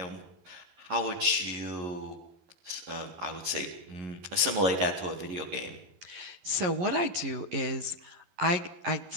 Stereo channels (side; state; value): left; late; 11 ms